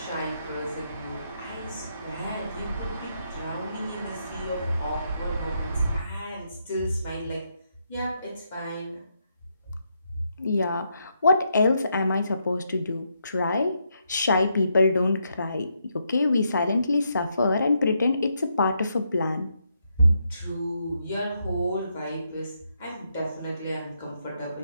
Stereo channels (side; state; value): both; inverted; correlation -0.79